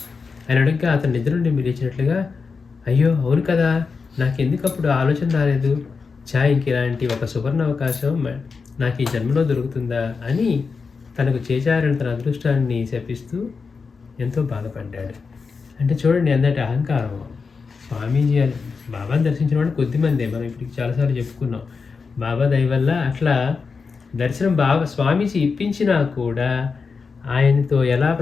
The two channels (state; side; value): quieter; right; 5.0 dB